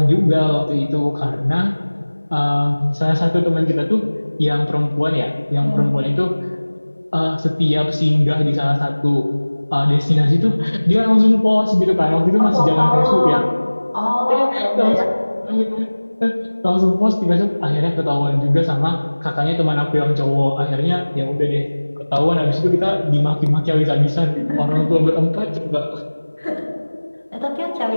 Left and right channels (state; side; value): inverted; both; correlation -1.00